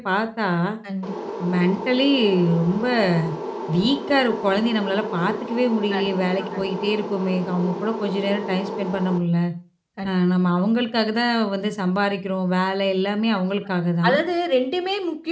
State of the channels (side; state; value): both; identical; correlation 1.00